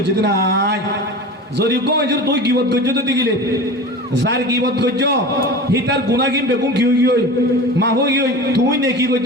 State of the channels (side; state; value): both; normal; correlation 0.33